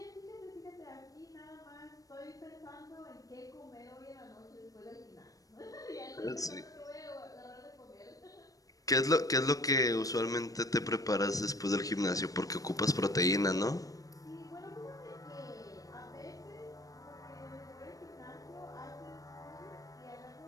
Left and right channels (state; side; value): late; right; 0.17 ms